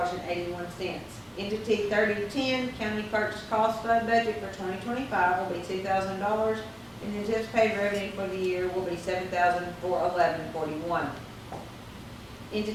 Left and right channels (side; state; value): both; identical; correlation 1.00